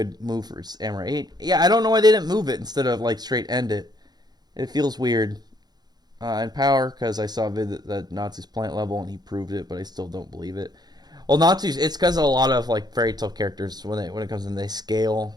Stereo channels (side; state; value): left; late; 0.20 ms